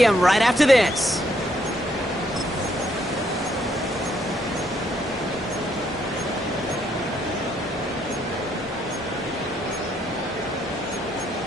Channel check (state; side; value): normal; both; correlation 0.72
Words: right after this.